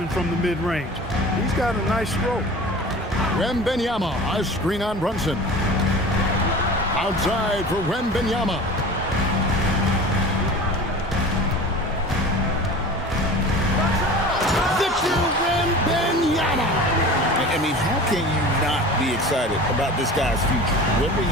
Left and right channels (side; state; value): both; normal; correlation 0.38